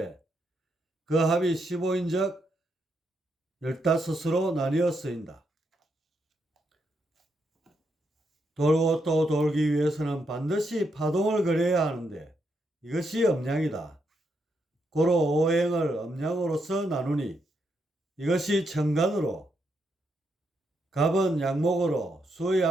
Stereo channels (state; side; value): normal; both; correlation 0.80